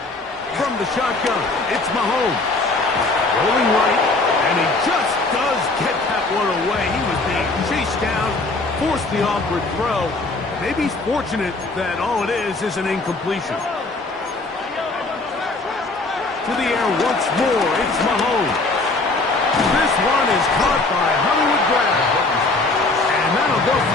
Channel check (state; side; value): quieter; right; 3.3 dB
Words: From the shotgun, it's Mahomes. Rolling right, and he just does get that one away. He was being chased down, forced the awkward throw. Maybe he's fortunate that all it is an incompletion. To the air once more, it's Mahomes. This one is caught by Hollywood Brown. And that'll go